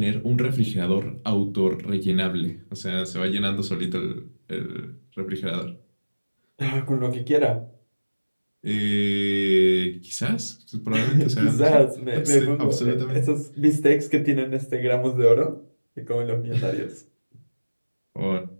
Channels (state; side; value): inverted; both; correlation -1.00